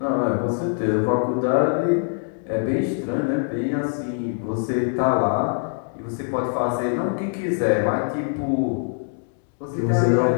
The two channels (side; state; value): right; silent; 59 dB below the other